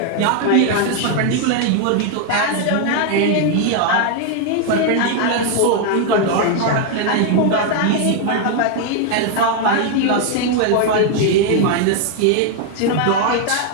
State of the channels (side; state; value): both; different; correlation 0.00